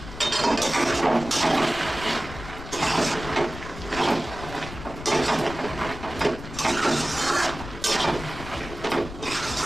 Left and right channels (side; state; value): left; noise; rumble, 12 dB below the sound